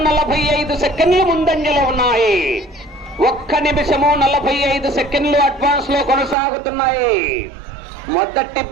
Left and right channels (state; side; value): drops out; left; at 6.4 s